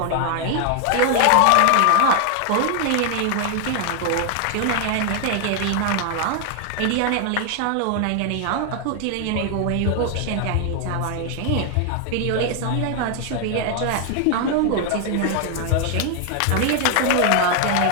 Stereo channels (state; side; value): different; both; correlation 0.00